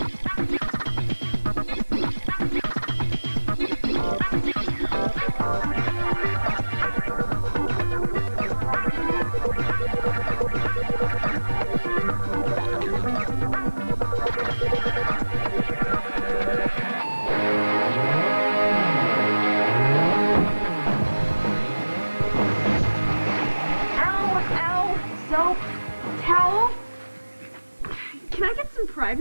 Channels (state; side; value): inverted; both; correlation -1.00